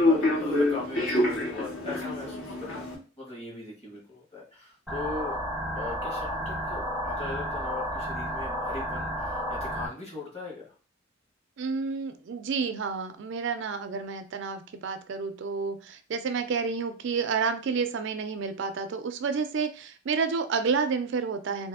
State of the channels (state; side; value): normal; both; correlation 0.27